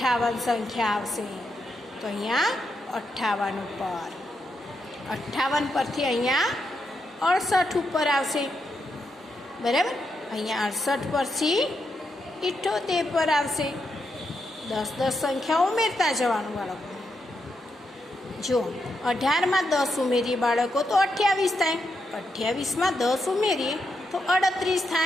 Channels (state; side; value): normal; both; correlation 0.83